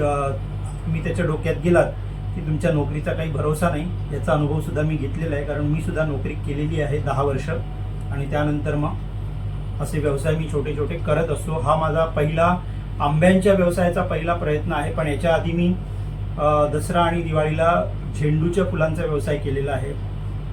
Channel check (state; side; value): identical; both; correlation 1.00